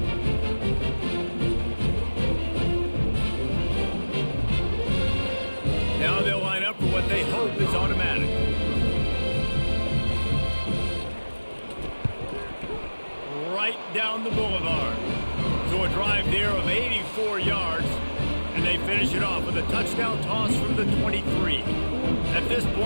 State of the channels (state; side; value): inverted; both; correlation -1.00